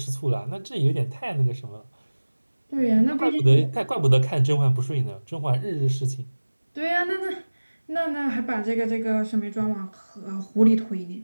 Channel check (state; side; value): inverted; both; correlation -1.00